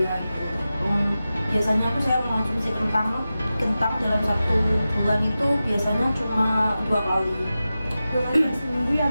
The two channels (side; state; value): both; inverted; correlation -0.94